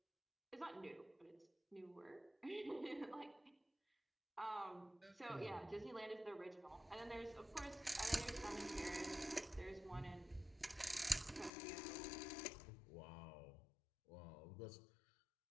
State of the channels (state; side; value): drops out; right; at 11.5 s